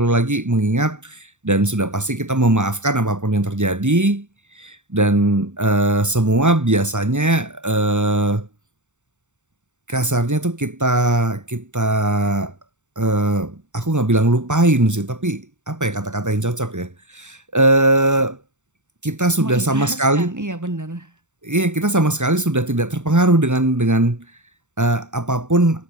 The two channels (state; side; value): late; left; 0.84 ms